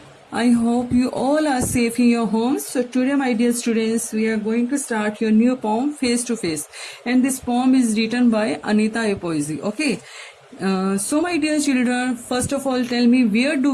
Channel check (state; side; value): identical; both; correlation 1.00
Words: I hope you all are safe in your homes. So today, my dear students, we are going to start your new poem, Face to Face. And this poem is written by Anita A. Poesy. Okay. So my dear children, first of all, tell me, where do